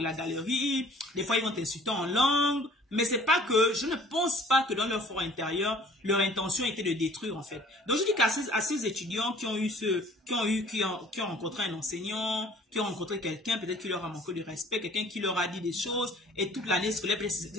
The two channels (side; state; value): both; normal; correlation 0.52